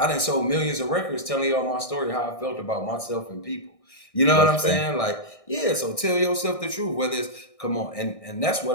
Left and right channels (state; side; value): late; right; 1.6 ms